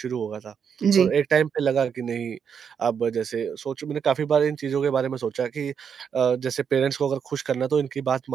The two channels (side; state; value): left; quieter; 7.2 dB